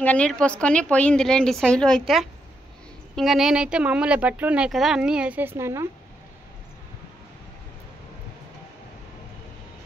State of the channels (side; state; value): both; normal; correlation 0.80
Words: నీళ్ళు పోసుకొని పోయింది లేండి శైలు అయితే. ఇంకా నేనైతే మామూలు బట్టలు ఉన్నాయి కదా, అన్నీ వేసేసినాను.